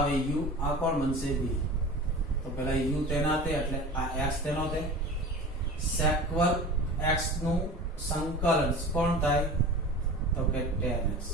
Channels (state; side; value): normal; both; correlation 0.36